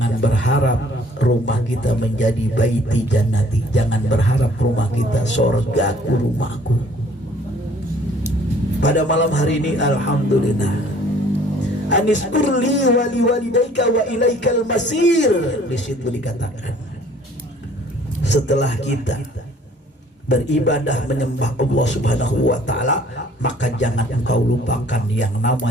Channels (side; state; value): both; normal; correlation 0.56